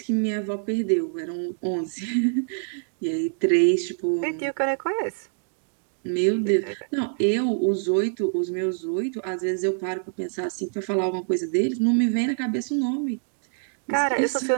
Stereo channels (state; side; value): silent; left; digital silence